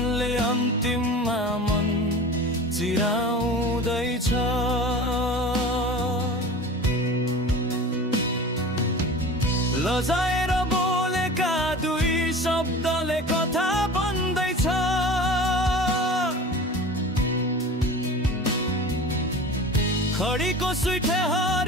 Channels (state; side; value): normal; both; correlation 0.37